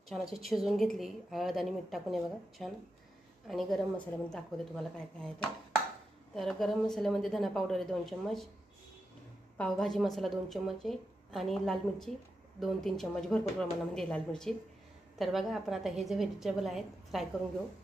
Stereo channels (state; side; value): normal; both; correlation 0.88